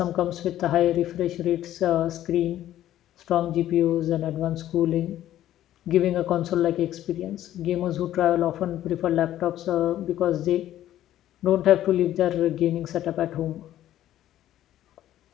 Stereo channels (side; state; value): right; quieter; 12.7 dB